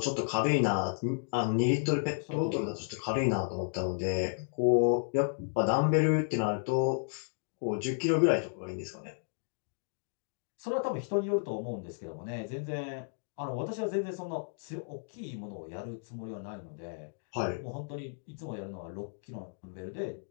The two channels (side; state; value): right; silent; digital silence